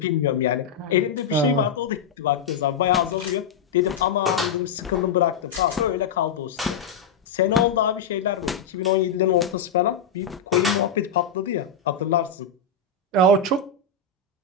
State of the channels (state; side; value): quieter; right; 5.7 dB